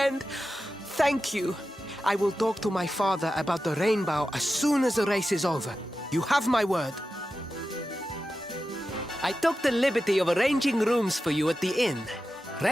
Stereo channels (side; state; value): both; normal; correlation 0.92